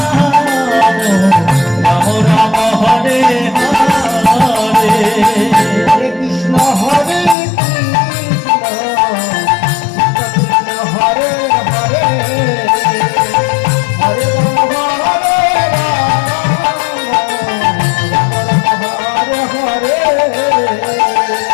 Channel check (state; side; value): drops out; right; at 7.4 s